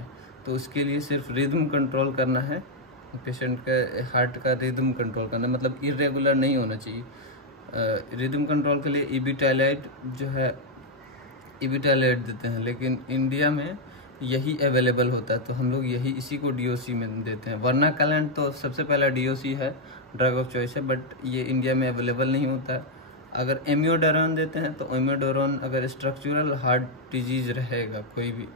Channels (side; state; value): both; normal; correlation 0.00